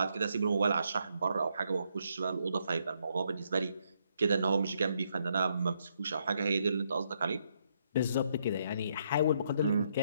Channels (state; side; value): inverted; both; correlation -0.75